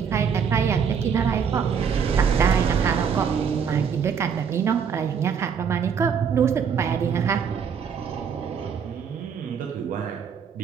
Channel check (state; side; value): quieter; left; 6.9 dB